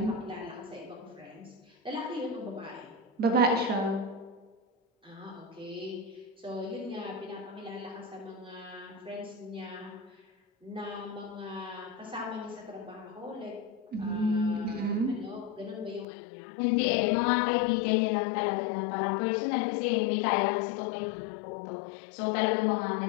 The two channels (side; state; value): right; drops out; at 16.1 s